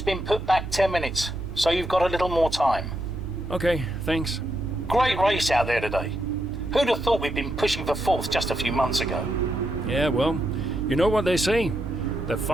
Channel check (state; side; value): normal; both; correlation 0.81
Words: been put back 10 minutes, so you've got a little more time. Okay, thanks. Great race out there today. Who'd have thought we'd been pushing for 4th just a few months ago? Yeah, well, you know what they say. The